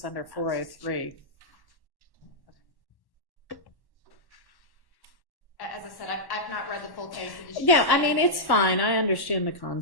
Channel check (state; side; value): late; right; 1.1 ms